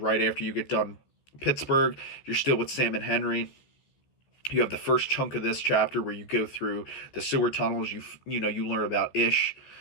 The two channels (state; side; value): late; right; 14 ms